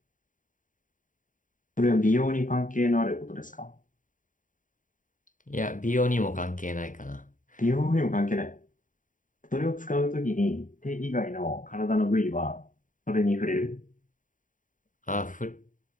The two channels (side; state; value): right; late; 0.38 ms